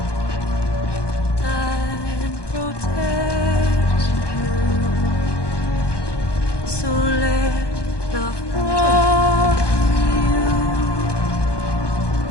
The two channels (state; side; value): late; right; 1.2 ms